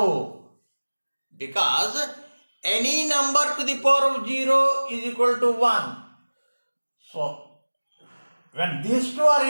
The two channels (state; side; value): inverted; both; correlation -1.00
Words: Because any number to the power of 0 is equal to 1. So when these two